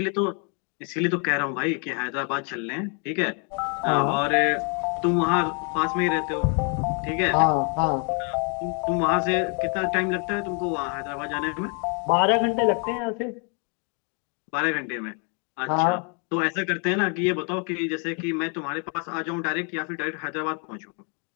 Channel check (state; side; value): quieter; right; 38.7 dB